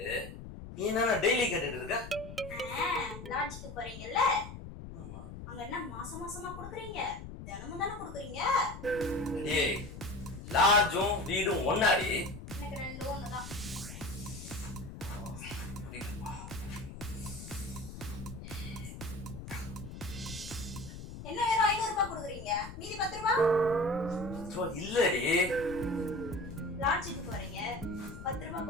நீ என்ன டெய்லி கேட்டுட்டு இருக்க? லாட்ஜுக்கு போறீங்கல்ல? ஆமா. அங்க என்ன மாசம் மாசமா கொடுக்குறீங்க? தினமும் தானே கொடுக்குறீங்க? டேய், லாட்ஜும் வீடும் ஒண்ணாடி? எனக்கு ரெண்டும் ஒண்ணுதான். என்ன வெறும் 500 ரூபாய் கொடுக்குறீங்க? மீதி 10 ரூபாய்? இல்லடி. லாட்ஜுக்கு போறீங்க, 10 ரூபாய்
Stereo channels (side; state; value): left; noise; rumble, 11 dB below the sound